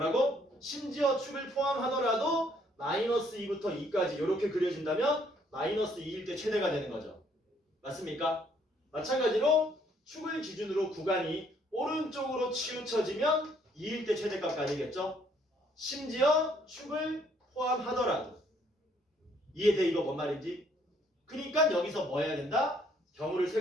심지어 축을 포함하더라도 마이너스 2부터 2까지 이렇게 그려진다면 마이너스 2일 때 최대가 되는 거죠. 맞습니까? 마찬가지로 축을 기준으로 구간이 오른쪽으로 치우쳐지면 2일 때 최대값까지겠죠? 심지어 축을 포함하더라도. 이해돼? 이거 뭔 말인지? 그러니까 여기서 뭐 해야 된다? 경우를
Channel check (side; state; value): both; normal; correlation 0.66